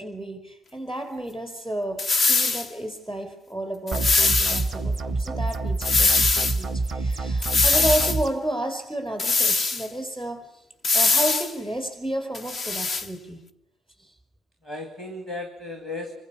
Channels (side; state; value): both; normal; correlation 0.81